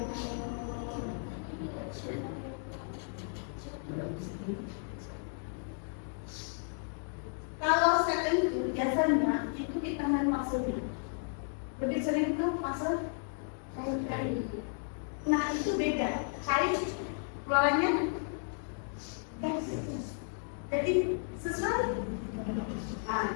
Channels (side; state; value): right; silent; 55 dB below the other